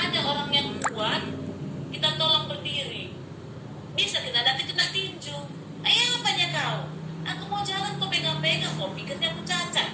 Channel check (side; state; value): both; identical; correlation 1.00